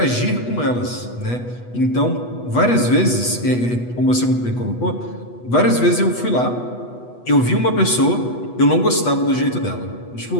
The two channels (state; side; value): late; right; 8.2 ms